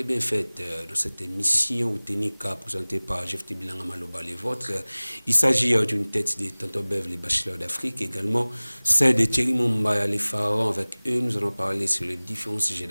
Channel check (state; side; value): inverted; both; correlation -1.00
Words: bien faites dans cette émission ou Ténika présentée par Jeff Bilanga Maloba les vôtres. Il s'agit d'une tête de Tonton Bev, les bachelors d'Afrique, également celle de Thierry Mombaya, les pharaons. Avec eux, nous allons parler sur les différents sujets